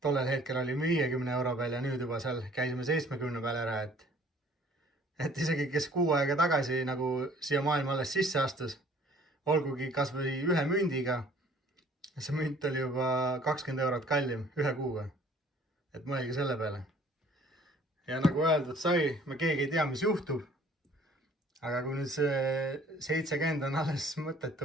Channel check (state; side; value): normal; both; correlation 0.55